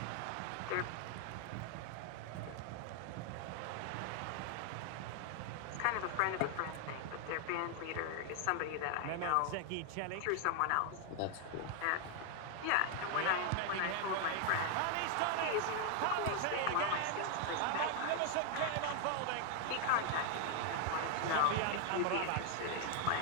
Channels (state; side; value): different; both; correlation 0.00